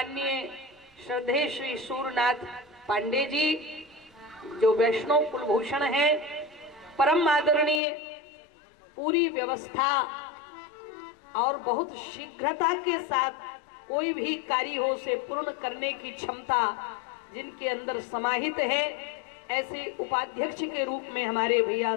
श्रद्धेय श्री सूरनाथ पांडे जी, जो वैष्णव कुलभूषण हैं, परम आदरणीय, पूरी व्यवस्था और बहुत शीघ्रता के साथ कोई भी कार्य हो उसे पूर्ण करने की क्षमता जिनके अंदर समाहित है, ऐसे उपाध्यक्ष के रूप में हमारे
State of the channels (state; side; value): drops out; right; at 7.8 s